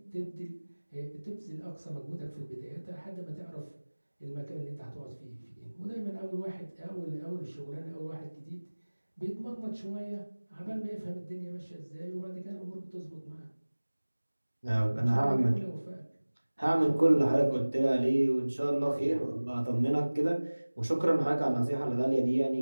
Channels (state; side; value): inverted; both; correlation -1.00